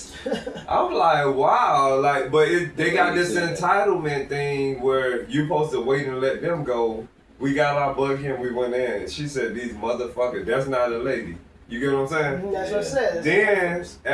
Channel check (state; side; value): identical; both; correlation 1.00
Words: I'm like, wow. Like, but they got this entitlement thing where you supposed to wait and let them go. We got our bug here and we went in. She said, these motherfuckers, that's not a lady. You get what I'm saying? That's what I said. Then